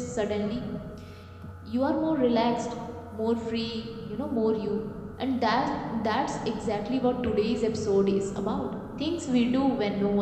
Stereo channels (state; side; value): identical; both; correlation 1.00